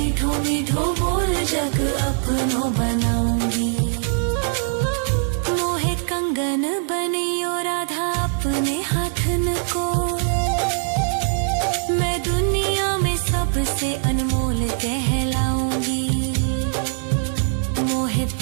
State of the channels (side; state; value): left; silent; digital silence